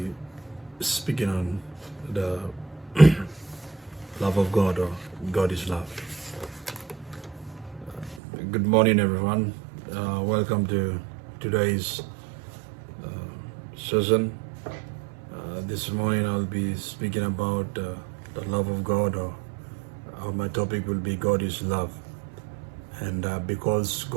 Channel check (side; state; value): left; drops out; at 8.2 s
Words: speaking on the love of God, or God is love. Good morning, everyone. Welcome to today's session. This morning I'll be speaking about the love of God, or my topic will be God is love. And because